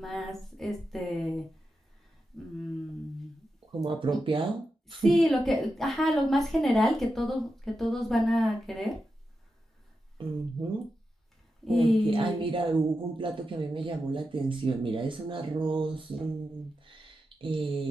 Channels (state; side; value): normal; both; correlation 0.89